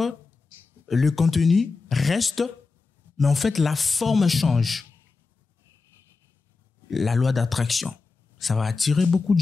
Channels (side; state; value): right; quieter; 4.3 dB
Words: le contenu reste, mais en fait la forme change. La loi d'attraction, ça va attirer beaucoup de